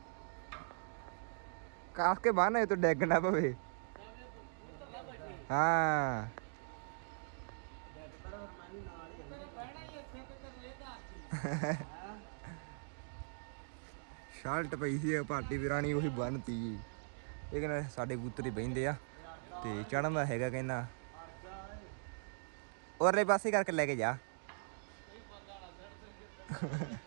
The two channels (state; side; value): silent; left; digital silence